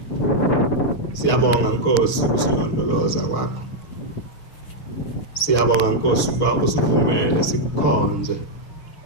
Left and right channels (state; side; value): late; right; 6.5 ms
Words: siyabonga Nkosi usilondoloza kwakho. Siyabonga Nkosi ukuba usivumele sikukhonze.